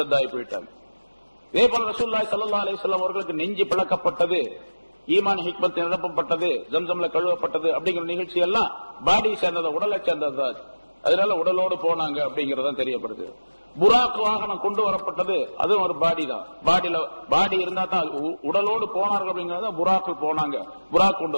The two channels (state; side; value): inverted; both; correlation -1.00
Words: போயிட்டாங்க. இதே போல ரசூலுல்லாஹி ஸல்லல்லாஹு அலைஹி வஸல்லம் அவர்களுக்கு நெஞ்சு பிளக்கப்பட்டது, ஈமான் ஹிக்மத் நிரப்பப்பட்டது, ஜம்சம்ல கழுவப்பட்டது அப்படிங்கிற நிகழ்ச்சி எல்லாம் பாடி சேர்ந்தது, உடலை சேர்ந்தது. அதனால உடலோடு போனாங்க அப்படிங்கறதான் தெரியப்படுது. புராக் வாகனம் கொண்டு வரப்பட்டது, அதுவும் ஒரு பாடி தான். பாடி இருந்தா தான் உடலோடு போனார்கள் அப்படிங்கறத புராக்கு போனாங்க, புராக் கொண்டு